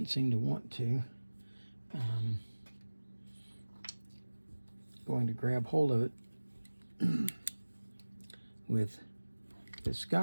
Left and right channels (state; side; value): inverted; both; correlation -1.00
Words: seem to want to. Going to grab hold of it with this